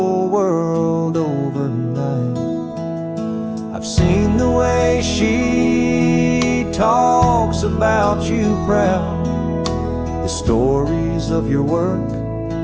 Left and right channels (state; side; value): identical; both; correlation 1.00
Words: world overnight. I've seen the way she talks about you proud, the stories of your work,